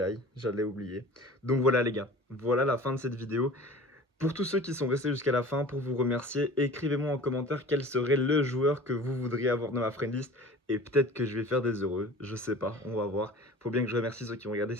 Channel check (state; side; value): normal; both; correlation 0.41